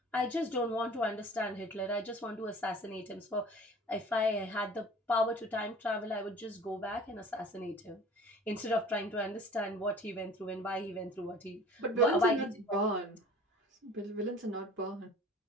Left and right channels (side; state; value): both; normal; correlation 0.45